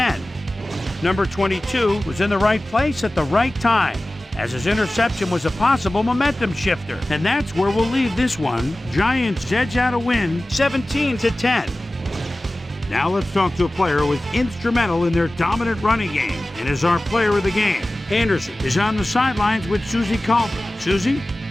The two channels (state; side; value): normal; both; correlation 0.97